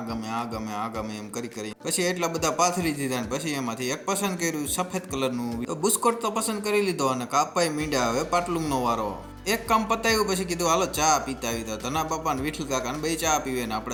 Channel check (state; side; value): identical; both; correlation 1.00